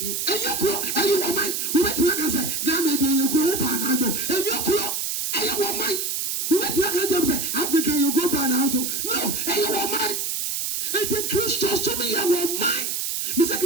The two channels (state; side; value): noise; right; hiss, 1 dB below the sound